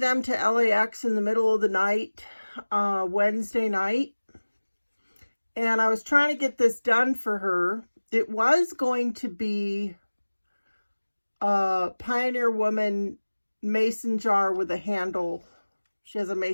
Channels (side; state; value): both; inverted; correlation -1.00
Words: to LAX in the middle of the night, Wednesday night. And I was trying to get this done for her. It was going to be a Pioneer Woman mason jar with a handle. She has a